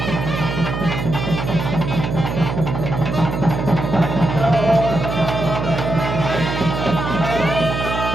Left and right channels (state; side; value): noise; right; hum, 4 dB below the sound